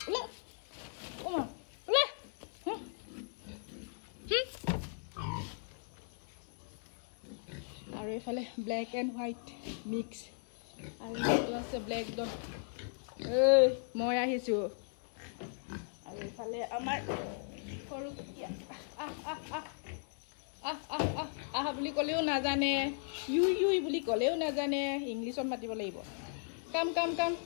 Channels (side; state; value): right; silent; 53 dB below the other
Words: Ula. Oma. Ula. Aru efale black and white mix. Aru eto ase black Don. Moi ahisu. Aru efale amar horu kutia. বুলি কলেও না জানে U বুলি কলেও না জানে ইংলিশত মাতিব লাগিব কাম